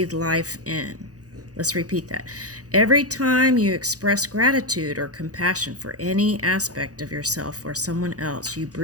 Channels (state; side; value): late; left; 0.67 ms